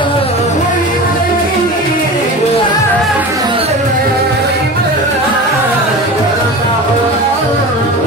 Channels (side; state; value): both; normal; correlation 0.32